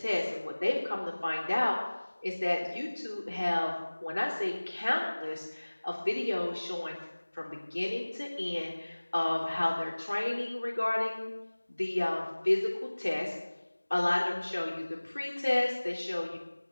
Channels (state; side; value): inverted; both; correlation -1.00